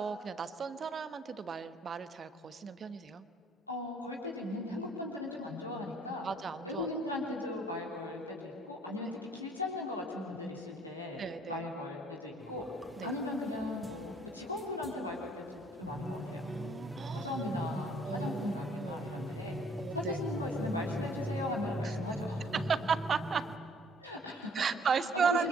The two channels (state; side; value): normal; both; correlation 0.59